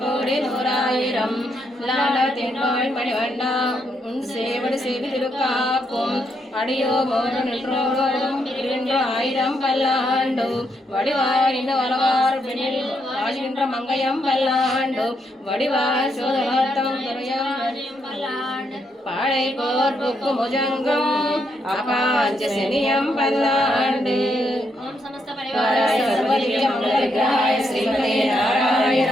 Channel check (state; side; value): normal; both; correlation 0.78